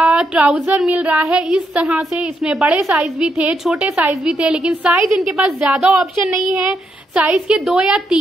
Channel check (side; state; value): both; normal; correlation 0.79